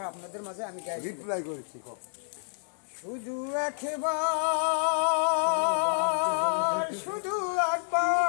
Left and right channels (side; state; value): right; silent; 58 dB below the other